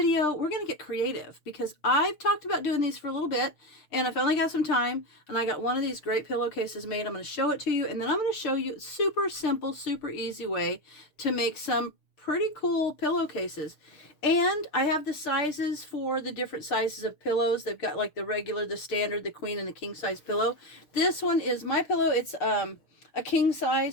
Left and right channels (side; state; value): right; late; 6.7 ms